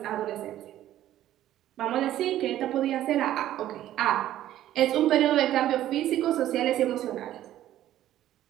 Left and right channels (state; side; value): quieter; left; 12.9 dB